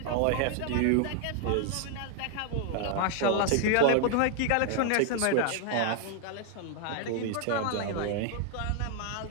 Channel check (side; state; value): both; different; correlation 0.00